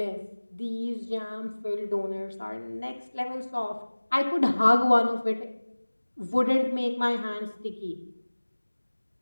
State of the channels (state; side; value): inverted; both; correlation -1.00